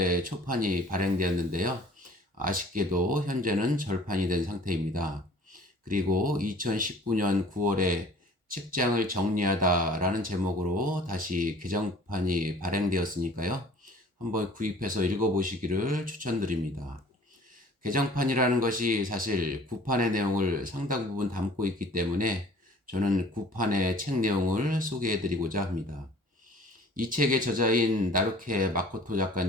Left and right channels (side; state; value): both; normal; correlation 0.49